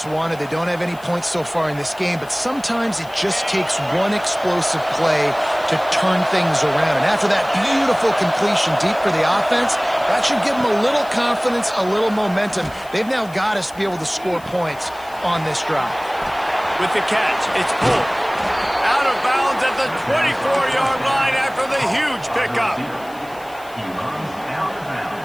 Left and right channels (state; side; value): noise; left; hiss, 23 dB below the sound